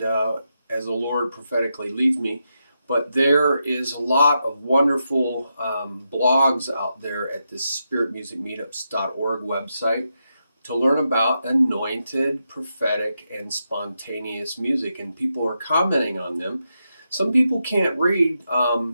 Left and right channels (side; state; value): both; inverted; correlation -0.85